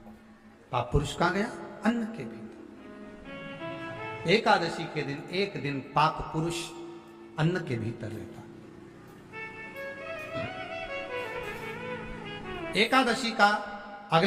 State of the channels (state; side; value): identical; both; correlation 1.00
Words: पाप पुरुष कहां गया? अन्न के भीतर। एकादशी के दिन एक दिन पाप पुरुष अन्न के भीतर रहता। एकादशी का